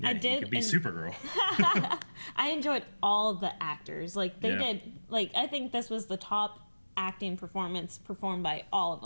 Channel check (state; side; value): inverted; both; correlation -1.00